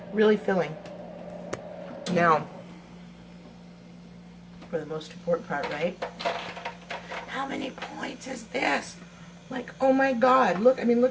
Really filling. Now, for the most important part, right? How many points is this? Like, oh my God, look, I mean,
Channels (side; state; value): both; identical; correlation 1.00